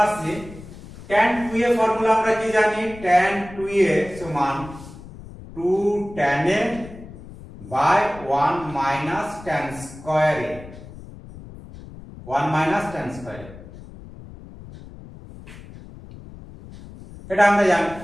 আসছি tan 2a ফর্মুলা। আমরা কি জানি, tan 2a সমান 2 tan a by 1 minus tan square a, 1 minus tan square a, এটা আমরা জানি।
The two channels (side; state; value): left; noise; rumble, 16 dB below the sound